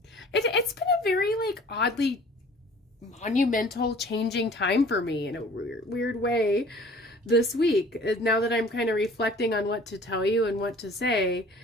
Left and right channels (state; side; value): normal; both; correlation 0.50